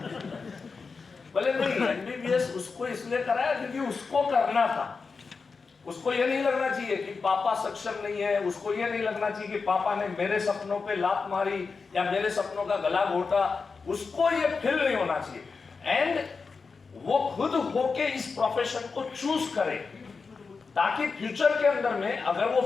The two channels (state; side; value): quieter; right; 4.8 dB